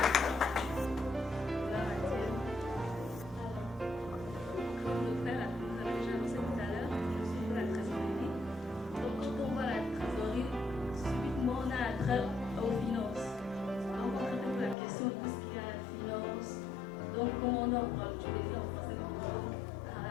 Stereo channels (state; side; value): drops out; right; at 14.8 s